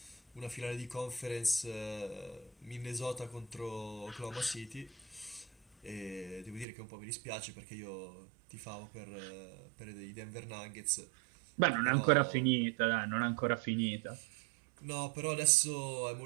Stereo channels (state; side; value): drops out; left; at 6.7 s